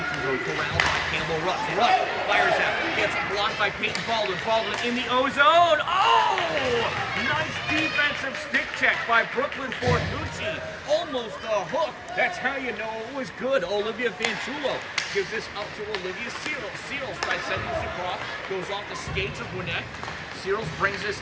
zone, corralled by Campbell Rutz. Rutz fires out, gets blocked by Peyton Baldwin. Baldwin in the O-zone. Oh! Nice defensive stick check by Brooklyn Fortucci. Almost a hook. That's how you know it was good. Olivia Fanchulo gives this up to Olivia Seals. Seals by sending this across, goes off the skates of Gwinnett. Seals brings this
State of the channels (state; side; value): identical; both; correlation 1.00